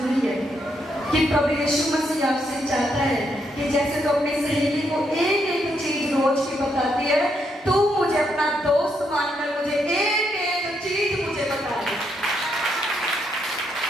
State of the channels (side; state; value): both; normal; correlation 0.77